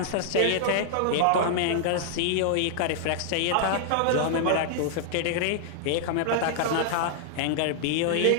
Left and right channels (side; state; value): both; different; correlation -0.01